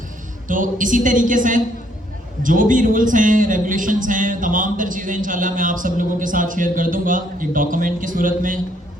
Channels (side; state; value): both; normal; correlation 0.68